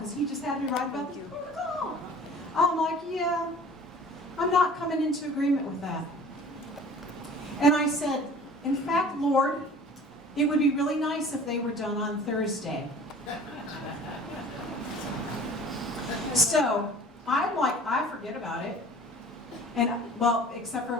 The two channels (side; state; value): both; normal; correlation 0.45